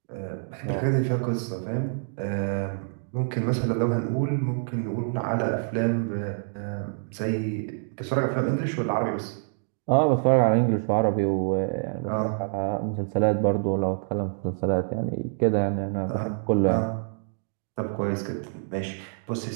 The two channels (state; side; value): silent; left; digital silence